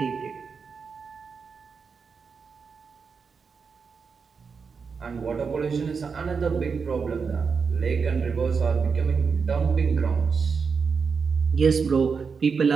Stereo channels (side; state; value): left; quieter; 5.5 dB